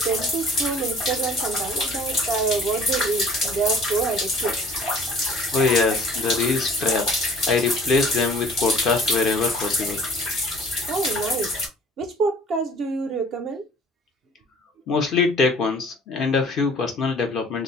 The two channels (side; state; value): both; normal; correlation 0.51